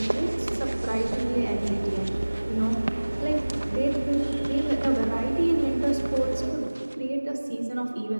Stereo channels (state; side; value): inverted; both; correlation -1.00